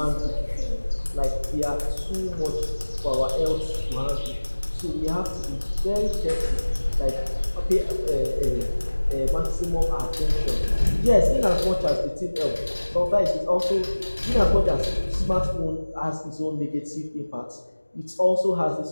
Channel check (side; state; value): both; inverted; correlation -1.00